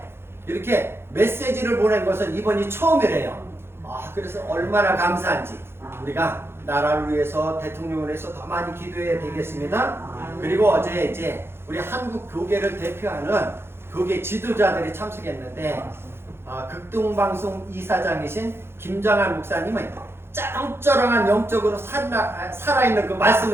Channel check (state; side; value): late; left; 0.12 ms